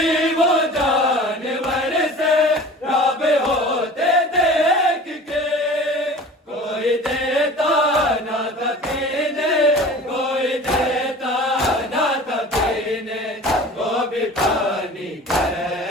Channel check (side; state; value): both; normal; correlation 0.40